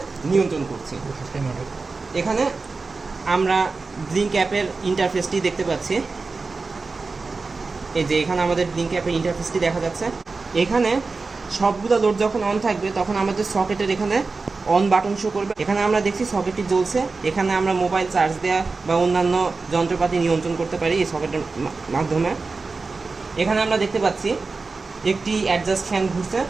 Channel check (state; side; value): quieter; left; 4.1 dB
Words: নিয়ন্ত্রণ করছি। এখানে আমরা ব্লিঙ্ক অ্যাপের ইন্টারফেসটি দেখতে পাচ্ছি। এই যে এখানে আমাদের ব্লিঙ্ক অ্যাপের ইন্টারফেসটি দেখা যাচ্ছে। এখানে সবগুলো লোড যখন অন থাকবে তখন আমাদের সকেটের এখানে অন বাটন শো করবে। এখানে আমরা দেখছি সকেটটি জ্বলছে। এখানে আমরা মোবাইল চার্জ দেওয়া বা অন্যান্য যন্ত্রপাতি নিয়ন্ত্রণ করতে পারি এই সকেটের মাধ্যমে। এখানে আমরা দেখতে পাচ্ছি একটি অ্যাডজাস্ট ফ্যান ঘুরছে।